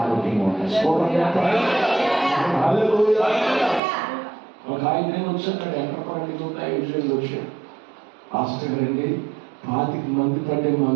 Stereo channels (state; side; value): drops out; left; at 3.8 s